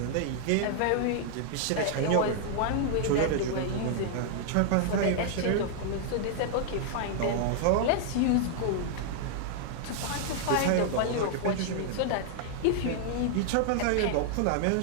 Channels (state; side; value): different; both; correlation -0.01